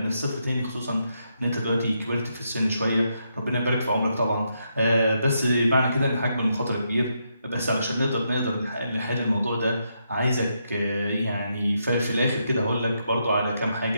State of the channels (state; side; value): inverted; both; correlation -0.80